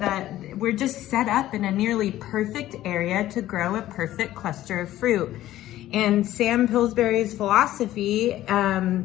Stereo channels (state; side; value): quieter; right; 14.1 dB